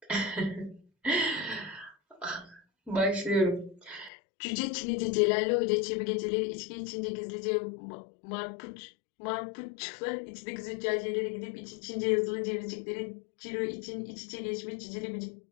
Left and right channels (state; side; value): drops out; right; at 4.1 s